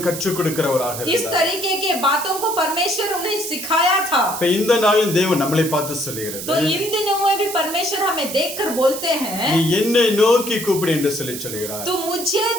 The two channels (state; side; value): noise; right; hiss, 8 dB below the sound